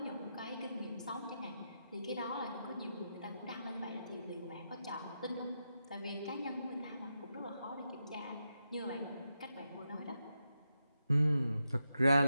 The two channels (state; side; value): inverted; both; correlation -0.86